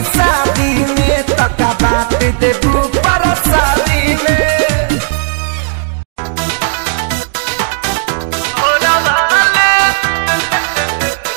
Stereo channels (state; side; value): silent; left; digital silence